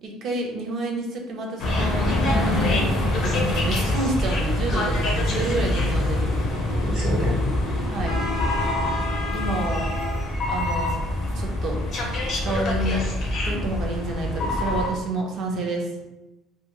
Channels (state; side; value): normal; both; correlation 0.64